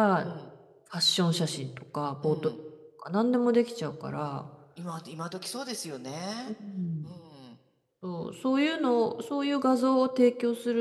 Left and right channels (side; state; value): both; identical; correlation 1.00